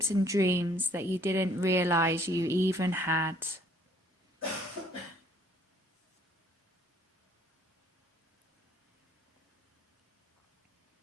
and dreams that you didn't realize you even had.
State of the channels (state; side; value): normal; both; correlation 0.60